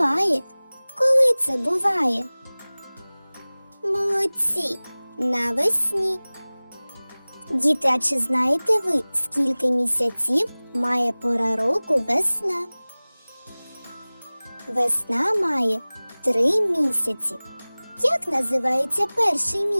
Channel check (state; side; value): inverted; both; correlation -1.00